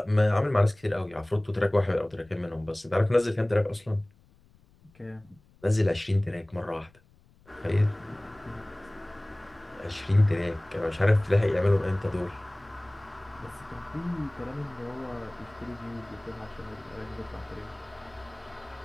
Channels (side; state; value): left; noise; rumble, 29 dB below the sound